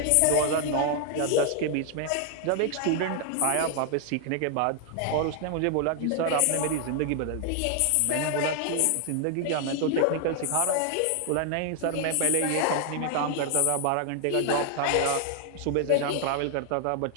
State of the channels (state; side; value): different; both; correlation 0.00